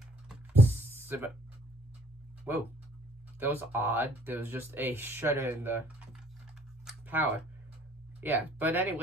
whoa, that was odd. There was just a shutter in the power. Yeah, but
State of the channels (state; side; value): normal; both; correlation 0.58